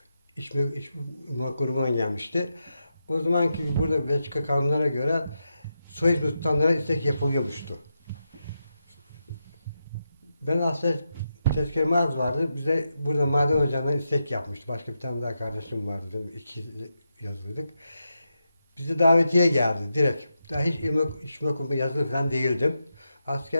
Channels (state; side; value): inverted; both; correlation -0.86